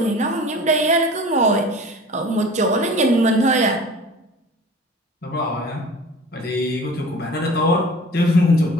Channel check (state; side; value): normal; both; correlation 0.42